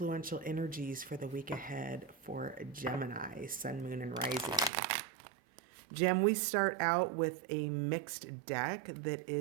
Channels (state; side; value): drops out; left; at 4.7 s